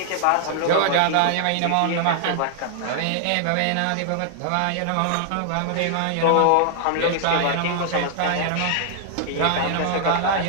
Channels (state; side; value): different; both; correlation 0.00